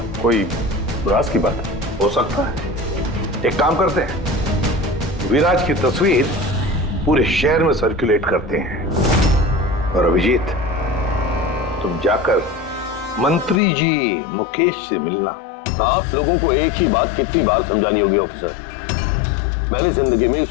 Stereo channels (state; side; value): drops out; right; at 13.6 s